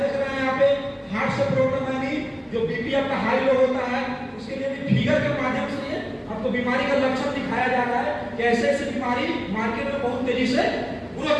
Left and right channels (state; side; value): identical; both; correlation 1.00